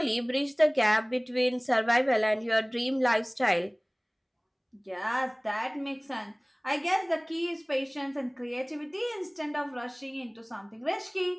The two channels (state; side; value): identical; both; correlation 1.00